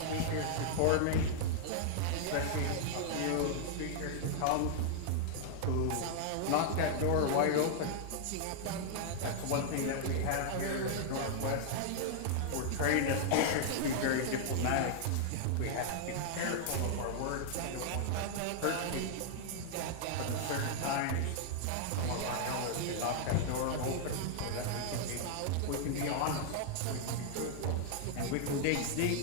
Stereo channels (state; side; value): different; both; correlation -0.01